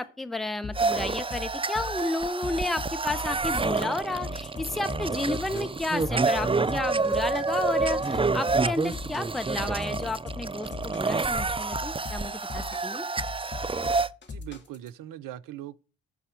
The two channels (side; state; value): both; normal; correlation 0.54